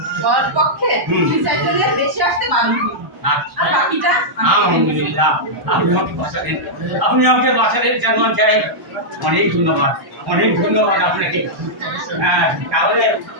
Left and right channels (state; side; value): late; left; 1.1 ms